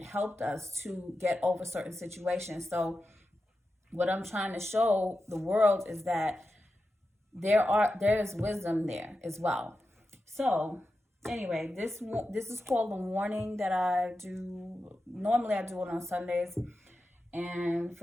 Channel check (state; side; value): normal; both; correlation 0.91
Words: helped us to get over certain situations. So what I'm trying to show the world is that there is wisdom there as well. So anyway, this is called The Warning that I do. Normally I do it on Sundays. And